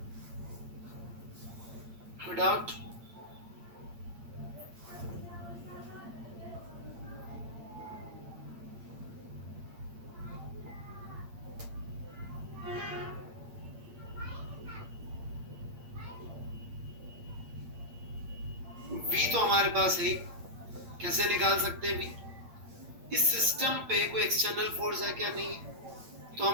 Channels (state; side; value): late; left; 8.7 ms